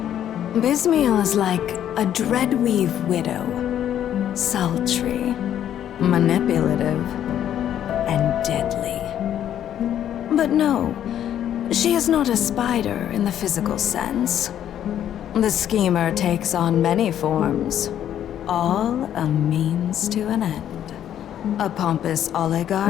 Bysmiel is like a dreadweave widow, sultry, manipulative, and deadly. But no, she is not a spider in the physical sense. The Schemer takes on many forms, all a means to an end. A pompous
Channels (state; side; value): quieter; right; 10.5 dB